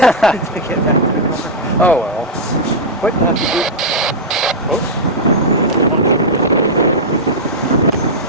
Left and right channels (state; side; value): normal; both; correlation -0.05